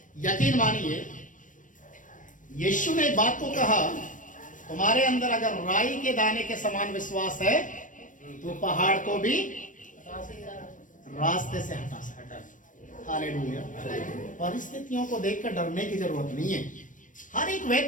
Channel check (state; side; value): late; right; 0.38 ms